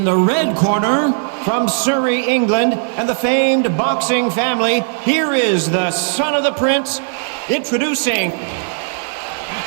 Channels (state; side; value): silent; left; 63 dB below the other